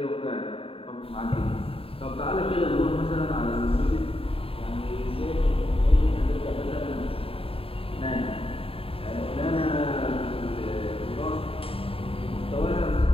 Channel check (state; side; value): late; right; 0.27 ms